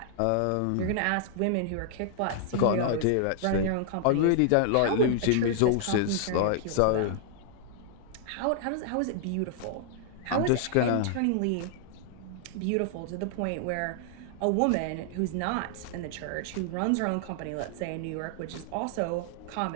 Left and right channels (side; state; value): both; different; correlation -0.01